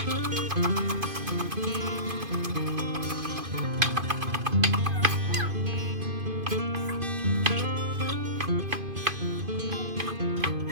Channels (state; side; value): late; left; 2.5 ms